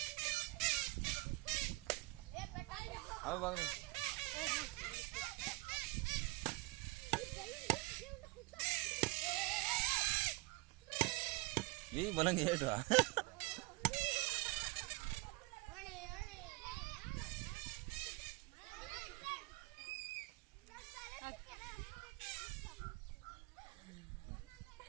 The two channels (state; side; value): quieter; left; 23.1 dB